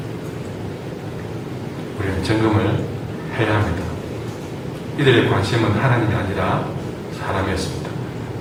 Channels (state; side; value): identical; both; correlation 1.00